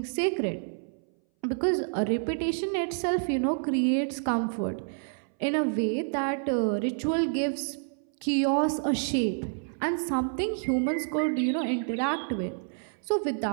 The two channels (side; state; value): left; silent; 59 dB below the other